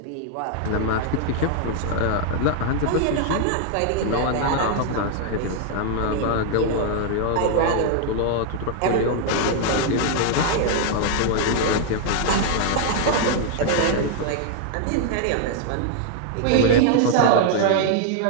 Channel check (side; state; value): both; different; correlation 0.00